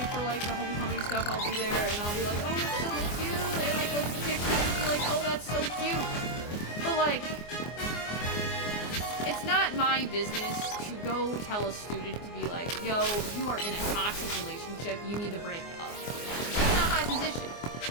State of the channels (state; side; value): late; right; 24 ms